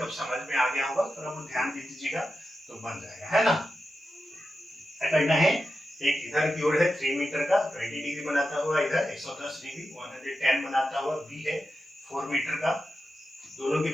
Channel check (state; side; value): normal; both; correlation 0.90